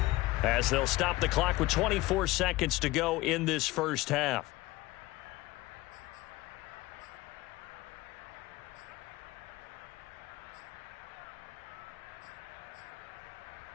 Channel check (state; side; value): quieter; right; 19.0 dB